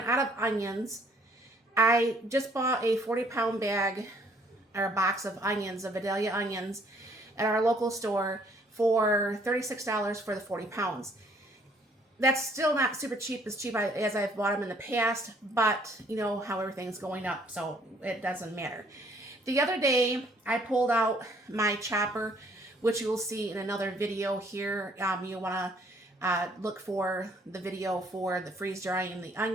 out of onions, I just bought a 40-pound bag or a box of onions, of Vidalia onions, at our local store for $36 for the 40 pounds. That's still not super cheap, as cheap as I've bought them in the past, but you know how everything's going up, so it doesn't matter. The other day, I pulled out my chopper, which you will see in another video here. You want to look for the video for the freeze drying the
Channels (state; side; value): normal; both; correlation 0.62